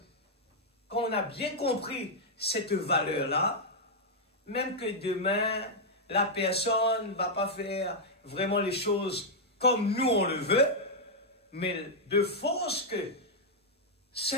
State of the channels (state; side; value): normal; both; correlation -0.04